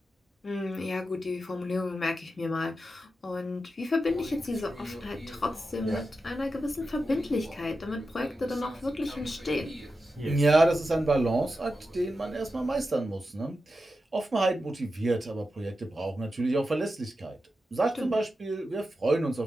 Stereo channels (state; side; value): normal; both; correlation 0.90